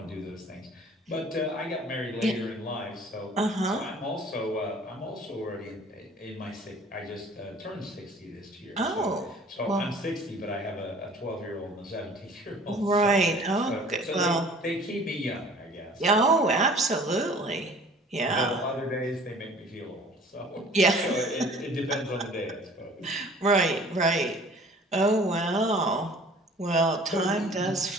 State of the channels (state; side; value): normal; both; correlation 0.49